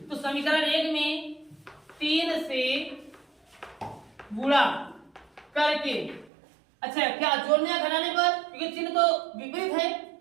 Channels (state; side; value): drops out; left; at 6.3 s